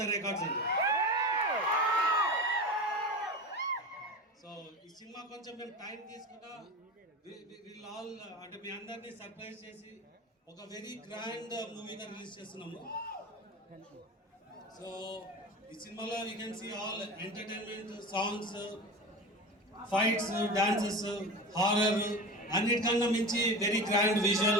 the records అండి. So ఈ సినిమా కొంచెం మేము టైం తీసుకున్నా విల్ ఆల్ అంటే మీ అందరినీ సర్ప్రైజ్ చేసి ఒక వెరీ గ్రాండ్ మూవీగా రిలీజ్ చేస్తున్నాము. సో ఈ సినిమాలో you can see all entertainment, songs, fights, dances, horror అన్నిటికన్నా మించి very grand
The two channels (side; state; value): both; normal; correlation 0.29